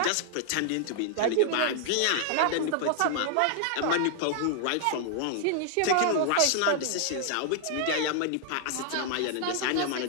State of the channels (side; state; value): both; different; correlation 0.00